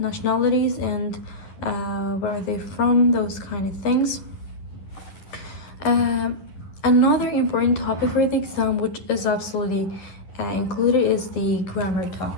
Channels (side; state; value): right; late; 11 ms